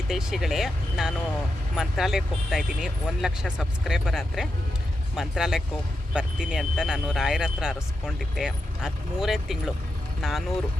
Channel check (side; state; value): both; normal; correlation 0.87